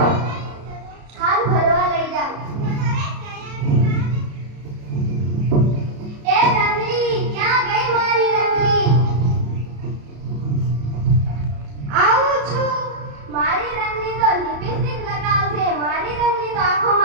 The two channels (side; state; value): left; late; 34 ms